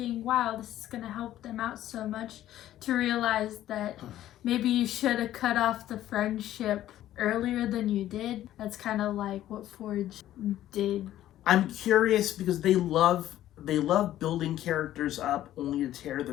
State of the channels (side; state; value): right; quieter; 13.0 dB